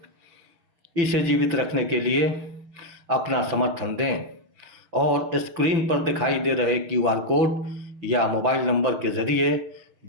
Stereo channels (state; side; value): late; left; 6.0 ms